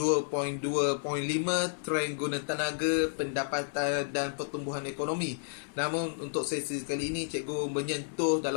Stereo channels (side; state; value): right; silent; 57 dB below the other